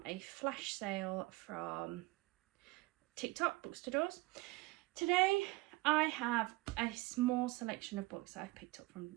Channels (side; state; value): left; quieter; 21.4 dB